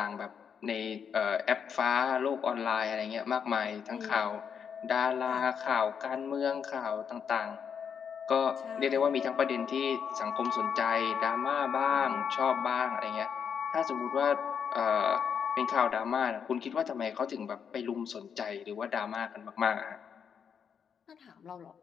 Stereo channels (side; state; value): right; quieter; 7.2 dB